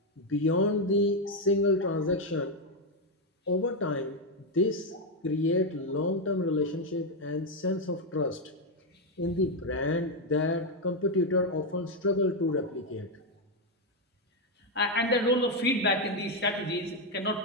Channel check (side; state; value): both; normal; correlation 0.04